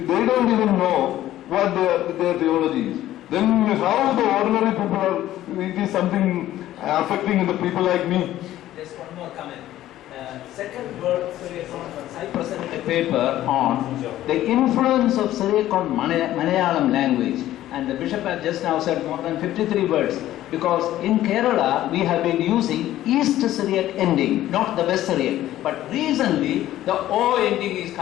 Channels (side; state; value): right; quieter; 13.8 dB